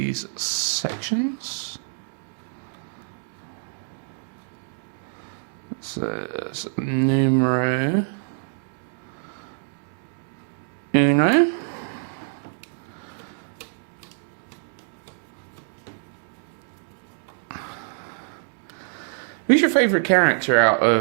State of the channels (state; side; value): silent; left; digital silence